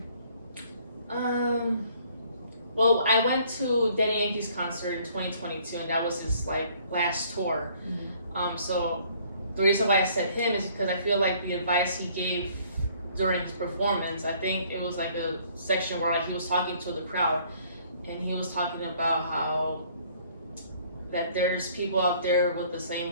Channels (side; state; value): both; inverted; correlation -0.60